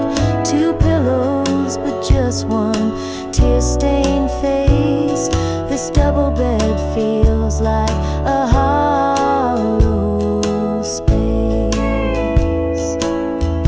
Two pillows, but just one tear-stained face. This double bed feels like a hollow space.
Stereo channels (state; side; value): identical; both; correlation 1.00